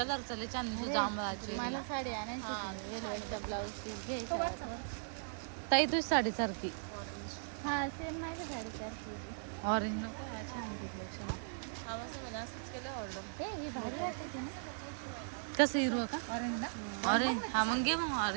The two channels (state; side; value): silent; left; digital silence